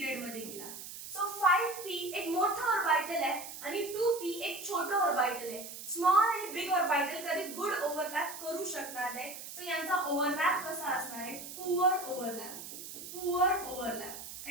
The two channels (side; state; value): right; noise; hiss, 11 dB below the sound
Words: मध्ये गेला. सो 5p एक मोठं ऑर्बिटल आहे आणि 2p एक छोटं ऑर्बिटल आहे. स्मॉल आणि बिग ऑर्बिटल कधी गुड ओव्हरलॅप करू शकणार नाही. सो यांचा ओव्हरलॅप कसा असणार आहे? Poor overlap.